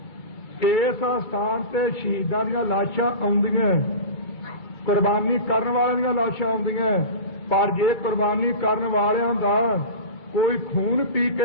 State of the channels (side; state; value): right; late; 2.3 ms